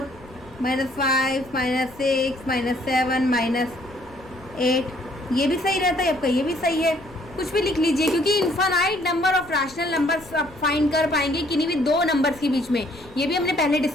-5, -6, -7, -8, ये भी सही रहता है आपका, ये भी सही है, कुछ भी लिख लीजिए, क्योंकि infinite number of rational numbers आप फाइंड कर पाएंगे किन्हीं भी 2 नंबर्स के बीच में, ये भी हमने पहले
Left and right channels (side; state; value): left; noise; rumble, 23 dB below the sound